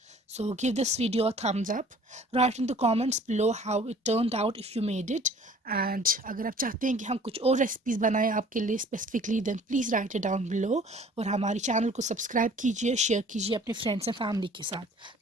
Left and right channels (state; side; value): normal; both; correlation 0.51